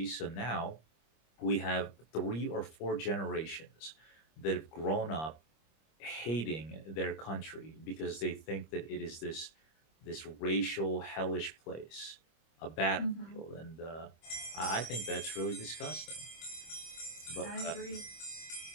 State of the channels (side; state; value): right; late; 25 ms